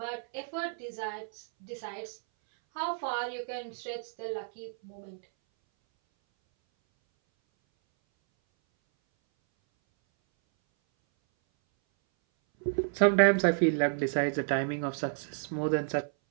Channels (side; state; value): left; silent; 57 dB below the other